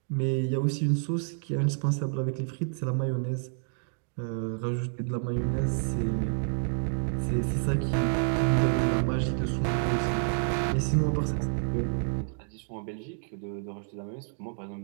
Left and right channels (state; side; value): silent; left; 58 dB below the other